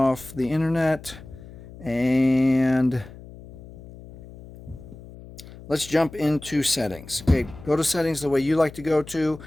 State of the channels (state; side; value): noise; left; hum, 17 dB below the sound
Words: the internet, and let's jump into settings. Okay, go to settings the way you like to go to.